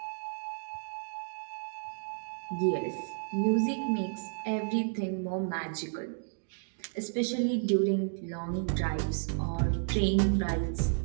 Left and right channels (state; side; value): silent; left; digital silence